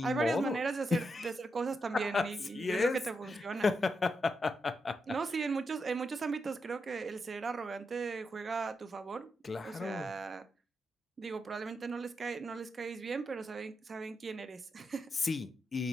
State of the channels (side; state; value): both; normal; correlation 0.84